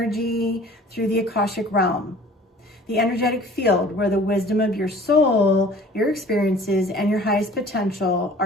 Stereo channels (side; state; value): both; normal; correlation 0.48